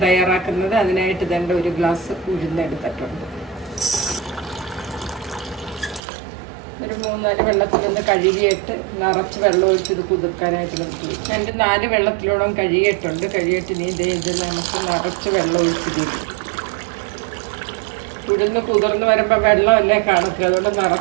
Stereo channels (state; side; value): drops out; left; at 6.0 s